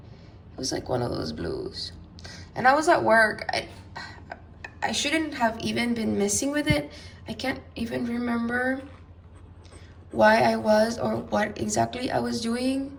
was like one of those blues, and I was at work. I shouldn't have even been messing with it. I can't even remember why I was or what exactly I was doing.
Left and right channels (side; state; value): both; identical; correlation 1.00